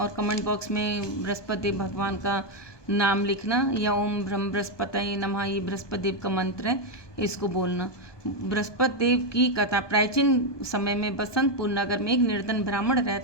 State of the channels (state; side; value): late; right; 1.2 ms